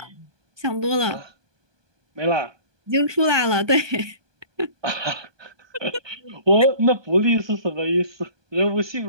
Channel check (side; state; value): left; late; 1.2 ms